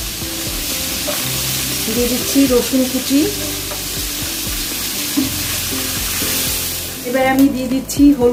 দিয়ে দিচ্ছি, রসুন কুচি। এবার আমি দিয়ে দিচ্ছি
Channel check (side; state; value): both; identical; correlation 1.00